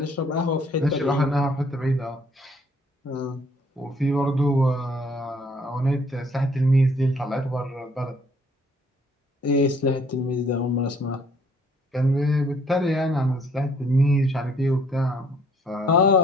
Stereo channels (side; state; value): both; normal; correlation 0.61